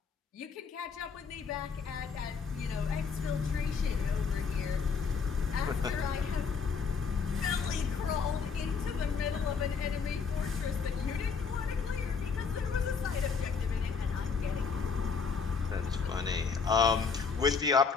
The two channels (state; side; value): quieter; right; 5.5 dB